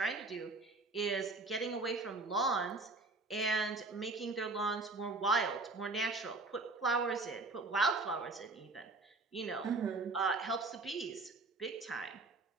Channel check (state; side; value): quieter; left; 3.5 dB